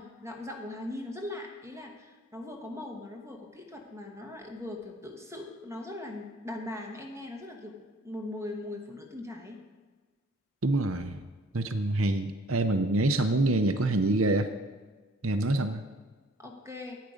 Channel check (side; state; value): both; normal; correlation 0.56